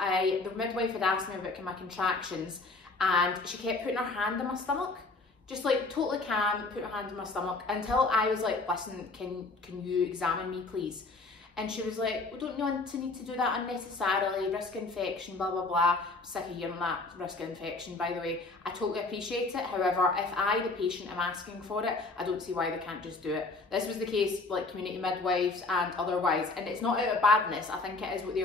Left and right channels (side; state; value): right; quieter; 3.4 dB